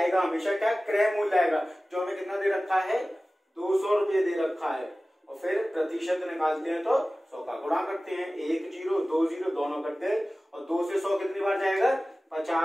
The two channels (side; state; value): both; normal; correlation 0.97